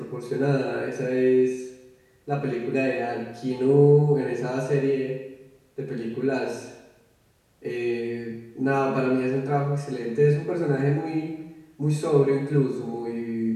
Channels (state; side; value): identical; both; correlation 1.00